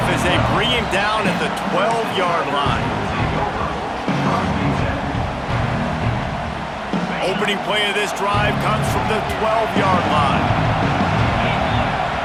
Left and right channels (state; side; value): identical; both; correlation 1.00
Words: as they bring him down at the 12-yard line. Opening play of this drive comes from the 12-yard line.